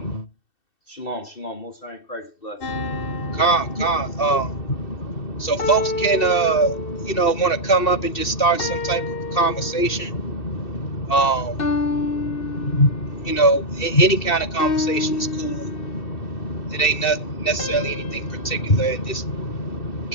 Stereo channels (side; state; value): right; late; 2.7 ms